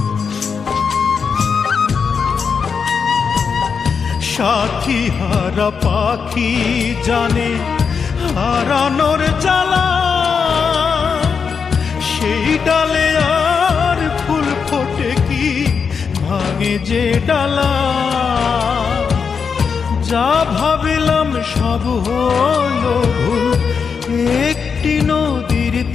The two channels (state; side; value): quieter; right; 6.0 dB